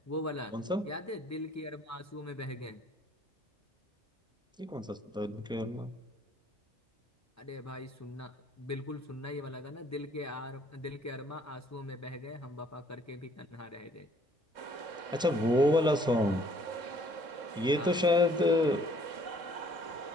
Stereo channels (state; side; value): normal; both; correlation 0.60